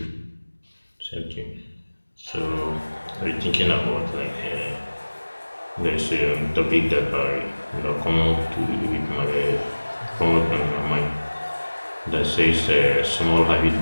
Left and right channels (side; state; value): both; inverted; correlation -1.00